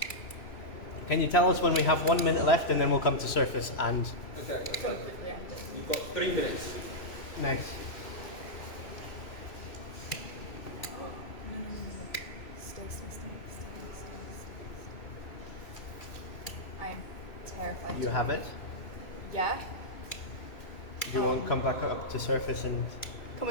Can you tell us when we have 1 minute left and then we'll come to surface and Okay. Completely. You've got 3 minutes. nice. I'm terrified. You have it. Yeah? You won't come back up to surface and Can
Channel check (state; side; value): late; right; 3.0 ms